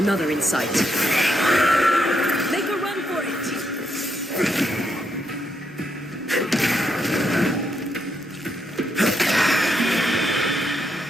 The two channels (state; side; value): normal; both; correlation 0.79